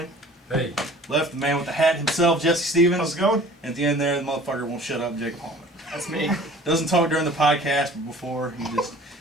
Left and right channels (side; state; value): both; normal; correlation 0.48